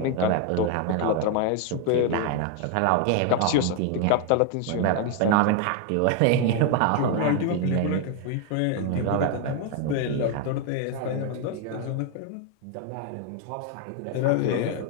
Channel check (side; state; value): both; different; correlation 0.01